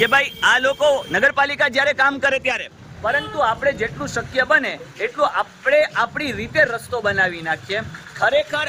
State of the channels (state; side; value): identical; both; correlation 1.00